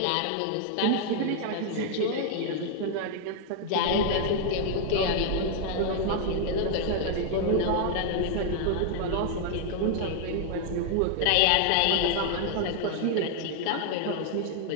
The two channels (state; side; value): different; both; correlation 0.00